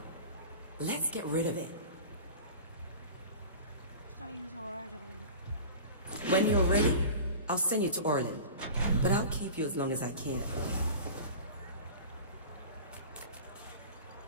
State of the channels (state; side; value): inverted; both; correlation -0.37